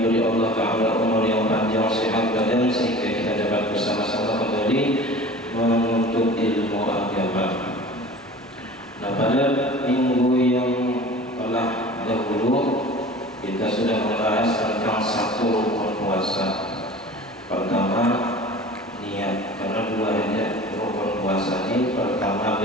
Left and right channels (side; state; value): both; normal; correlation 0.41